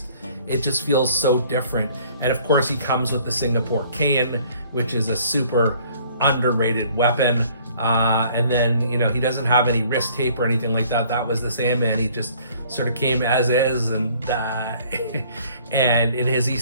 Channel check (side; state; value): both; inverted; correlation -0.56